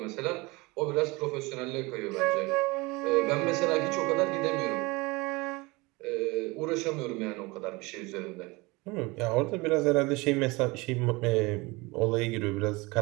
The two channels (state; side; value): quieter; left; 24.2 dB